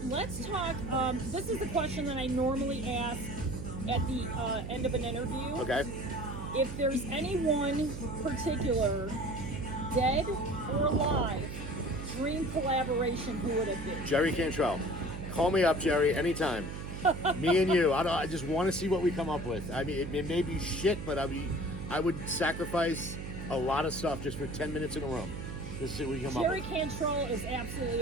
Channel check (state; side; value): noise; right; hum, 7 dB below the sound